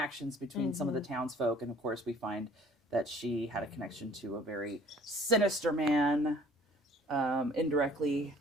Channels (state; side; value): normal; both; correlation 0.53